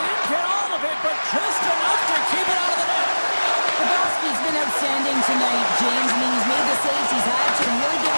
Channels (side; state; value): both; inverted; correlation -1.00